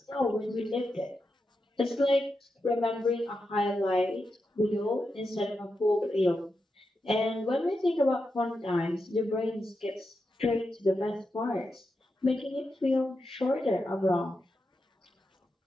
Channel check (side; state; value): both; normal; correlation 0.87